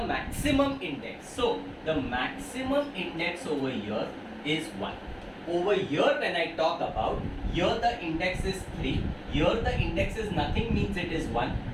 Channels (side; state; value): both; identical; correlation 1.00